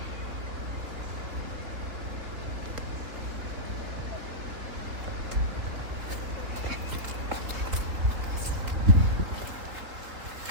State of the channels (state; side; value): late; left; 4.0 ms